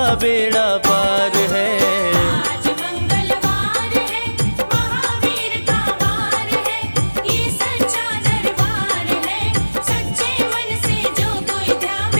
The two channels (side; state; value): both; inverted; correlation -1.00